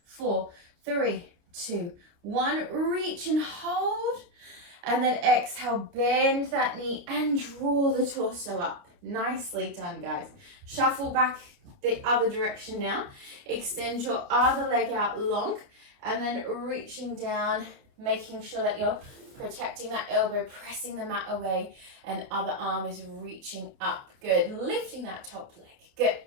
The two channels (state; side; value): late; left; 29 ms